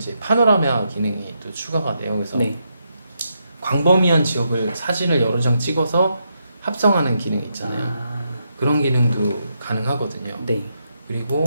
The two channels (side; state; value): both; inverted; correlation -0.81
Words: 파노라마 기능이 또 추가가 돼요. 그래서 네. 광범위한 지역을 사진을 여러 장 찍어서 합성하는 기능 있잖아요. 아. 그런 기능도 가능하거든요. 네.